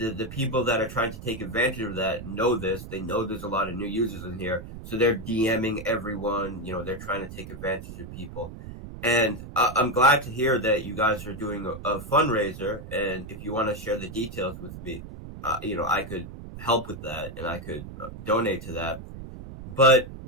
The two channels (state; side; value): noise; right; rumble, 12 dB below the sound